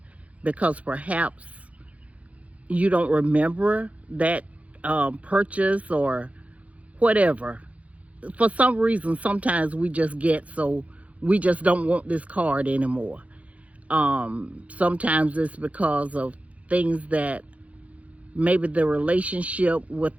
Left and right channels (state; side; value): late; left; 0.066 ms